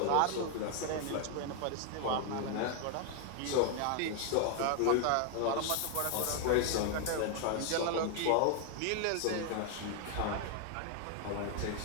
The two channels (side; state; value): both; different; correlation 0.00